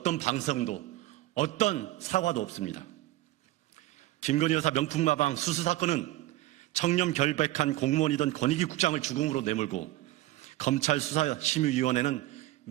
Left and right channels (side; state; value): left; quieter; 16.6 dB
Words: 방송도 어떤 사과도 없습니다. 김건희 여사 명품마방 수수 사건은 청렴 결백한 공무원이던 권익위 국장을 죽음으로 내몰고 검찰 수사심의위원회는